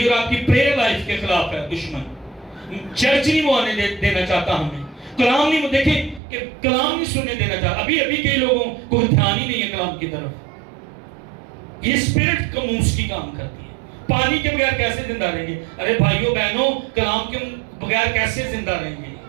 اور آپ کی پریئر لائف کے خلاف ہے دشمن۔ چرچ نہیں وہ آنے دینا چاہتا ہمیں، کلام نہیں، وہ دیکھیں کہ کلام نہیں سننے دینا چاہتا۔ ابھی کئی لوگوں کو دھیان ہی نہیں ہے کلام کی طرف۔ یہ اسپرٹ کموس کی کام کرتی ہے۔ پانی کے بغیر کیسے زندہ رہیں گے؟ ارے بھائیوں بہنوں، کلام کے بغیر کیسے زندہ رہیں گے؟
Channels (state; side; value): drops out; left; at 6.2 s